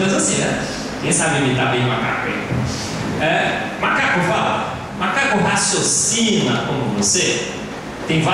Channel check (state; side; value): identical; both; correlation 1.00